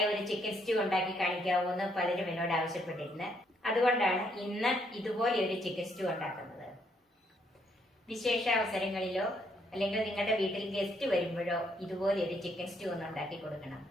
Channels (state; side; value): normal; both; correlation 0.72